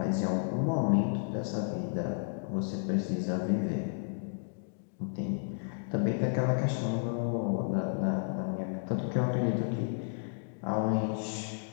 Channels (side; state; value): right; silent; digital silence